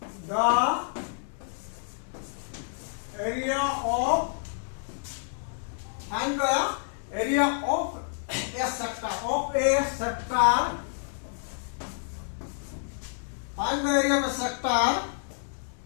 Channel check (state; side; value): silent; right; 59 dB below the other